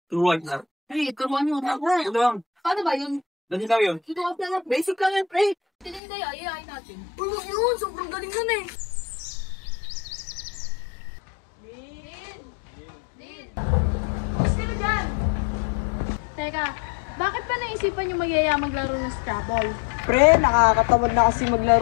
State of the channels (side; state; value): right; drops out; at 6.0 s